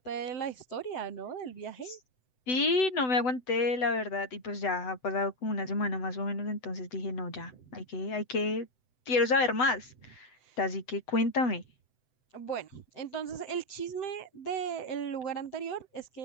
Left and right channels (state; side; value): late; right; 7.9 ms